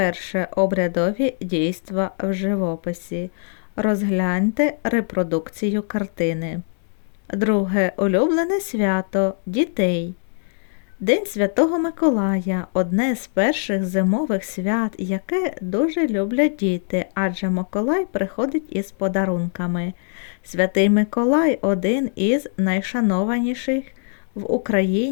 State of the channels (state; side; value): silent; right; 62 dB below the other